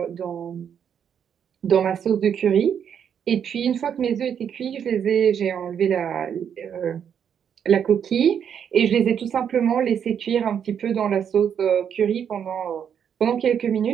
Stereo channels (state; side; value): quieter; left; 8.2 dB